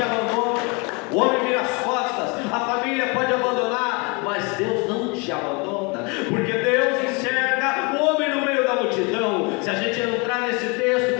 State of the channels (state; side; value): quieter; right; 30.3 dB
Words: abandona, o homem vira as costas, a família pode abandonar, mas Deus não te abandona, porque Deus enxerga o homem no meio da multidão. Se a gente entrar nesse texto,